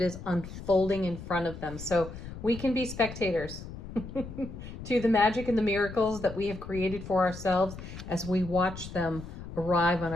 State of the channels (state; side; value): noise; left; rumble, 11 dB below the sound